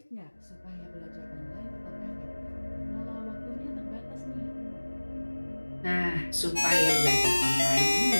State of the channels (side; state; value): both; inverted; correlation -1.00